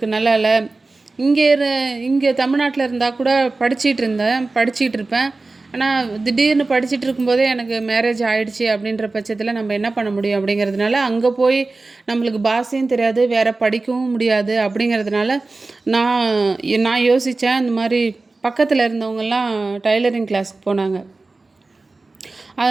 நல்லா இல்லை. இங்கே தமிழ்நாட்டில் இருந்தால் கூட படிச்சிகிட்டு இருப்பேன். ஆனால் திடீர்னு படிச்சுட்டு இருக்கும்போதே எனக்கு மேரேஜ் ஆகிடுச்சி. அப்படின்ற பட்சத்தில் நம்ம என்ன பண்ண முடியும் அப்படிங்கிறதுனால, அங்கே போய் நம்மளுக்கு பாஷையும் தெரியாது, வேறு படிக்கவும் முடியாது. அப்படிங்கிறதுனால நான் யோசித்தேன். இந்த மாதிரி பக்கத்தில் இருந்தவங்கெல்லாம் டைலரிங் கிளாஸுக்கு போனாங்க.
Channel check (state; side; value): quieter; left; 3.4 dB